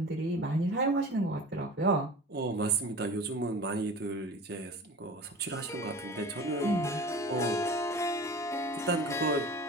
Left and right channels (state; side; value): normal; both; correlation 0.38